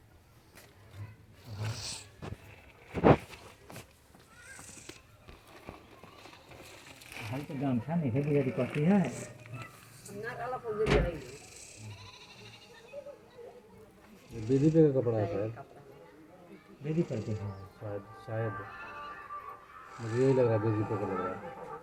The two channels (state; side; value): identical; both; correlation 1.00